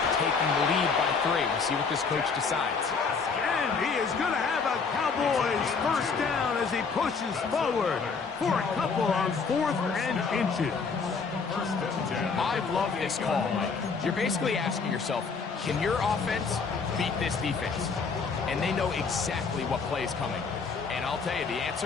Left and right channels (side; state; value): right; quieter; 5.1 dB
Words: taking the lead by 3? We'll see what this coach decides. And he is going to have a Cowboys 1st down as as he pushes forward for a couple on 4th and inches. I love this call, Mike. You're basically asking yourself, can your offense beat this defense? And they know exactly what play is coming. And I'll tell you the